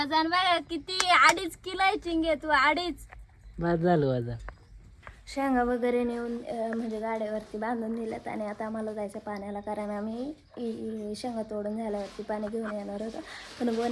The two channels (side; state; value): both; identical; correlation 1.00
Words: बघ किती. 2.5 किलो आहे चिंगे तू. 2.5. बाद झालं वजन. शेंगा वगैरे नेऊन म्हणजे गाड्यावरती बांधून दिल्यात. आणि आता आम्हाला जायचं पाण्याला, कारण आम्ही शेंगा तोडून झाल्यावरती पाणी घेऊन येणार होतो. पण